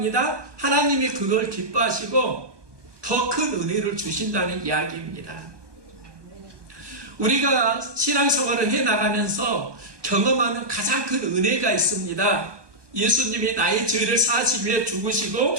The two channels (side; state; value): left; late; 1.2 ms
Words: 하나님이 그걸 기뻐하시고 더 큰 은혜를 주신다는 이야기입니다. 우리가 신앙생활을 해나가면서 경험하는 가장 큰 은혜가 있습니다. 예수님이 나의 죄를 사하시기 위해 죽으시고